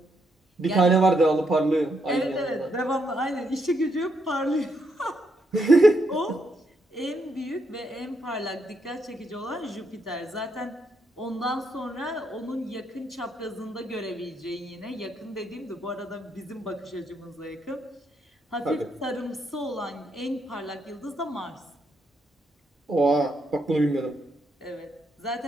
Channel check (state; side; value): normal; both; correlation 0.78